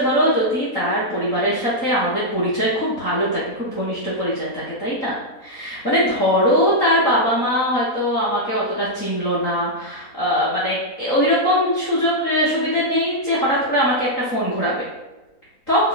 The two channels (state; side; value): late; right; 4.0 ms